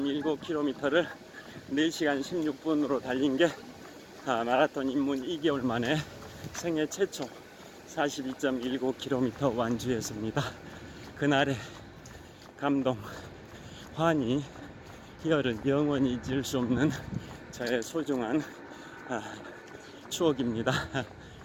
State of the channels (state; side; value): identical; both; correlation 1.00